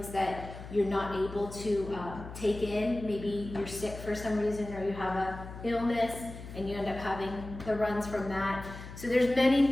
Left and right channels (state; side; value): noise; left; hum, 12 dB below the sound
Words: that you're not able to take in. Maybe you're sick for some reason, or you have an illness and you end up having the runs from that. So there's many